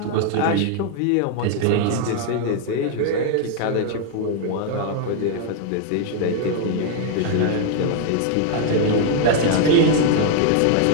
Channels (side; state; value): both; different; correlation 0.00